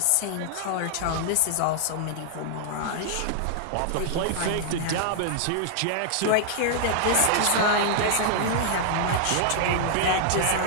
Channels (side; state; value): both; different; correlation 0.00